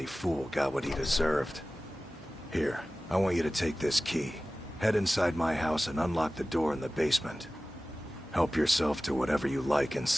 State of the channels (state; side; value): normal; both; correlation 0.97